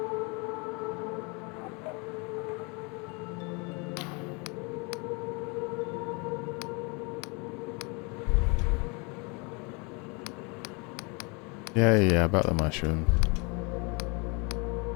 Yeah, about the mushroom.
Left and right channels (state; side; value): quieter; right; 30.6 dB